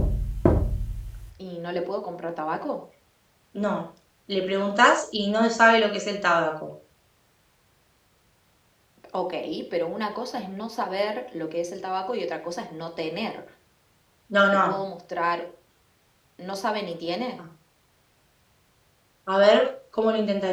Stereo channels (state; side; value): identical; both; correlation 1.00